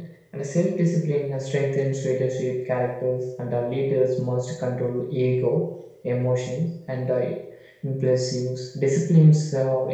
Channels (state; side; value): identical; both; correlation 1.00